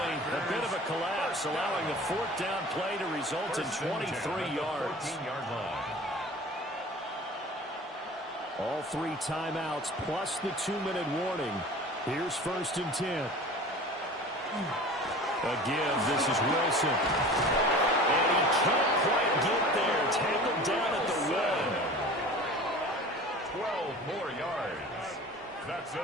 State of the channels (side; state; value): both; normal; correlation 0.40